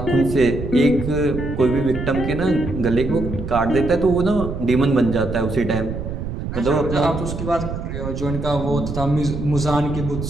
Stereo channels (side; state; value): right; noise; rumble, 6 dB below the sound